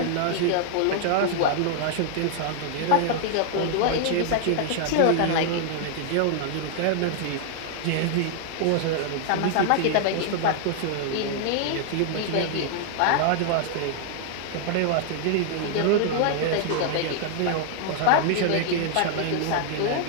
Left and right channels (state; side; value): different; both; correlation 0.00